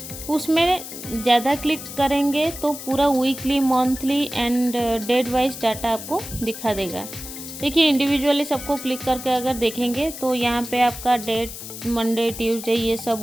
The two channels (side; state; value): left; noise; hiss, 11 dB below the sound